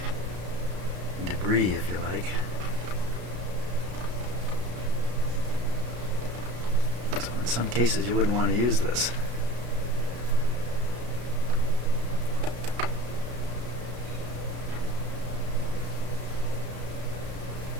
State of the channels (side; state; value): left; late; 33 ms